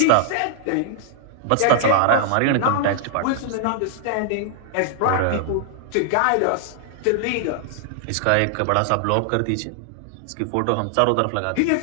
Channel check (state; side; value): different; both; correlation -0.01